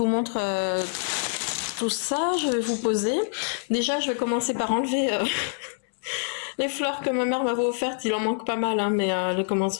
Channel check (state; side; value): silent; right; 61 dB below the other